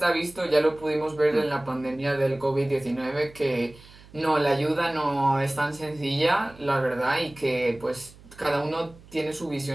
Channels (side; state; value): right; noise; hum, 23 dB below the sound